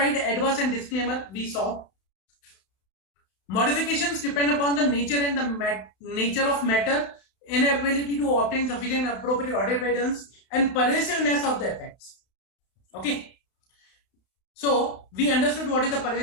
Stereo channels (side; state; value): right; late; 32 ms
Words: adverse and disclaimer we saw. Modifications depend upon the nature and the nature of matter, inability to obtain sufficient appropriate audit evidence, and pervasiveness of the effects. Okay. So we understood what is the